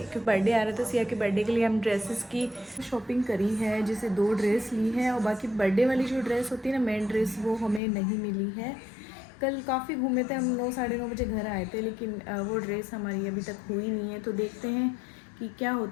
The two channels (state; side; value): drops out; right; at 7.8 s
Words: बर्थडे आ रहा था सिया के। बर्थडे के लिए हम ड्रेसेस की शॉपिंग करी है, जैसे 2 ड्रेस ली है, और बाकी बर्थडे वाली जो ड्रेस होती है ना, मेन ड्रेस, वो हमें नहीं मिली है। कल काफ़ी घूमे थे हम, 9 साढ़े 9 बजे घर आए थे, लेकिन वो ड्रेस हमारी अभी तक हुई नहीं है। तो देखते हैं कि क्या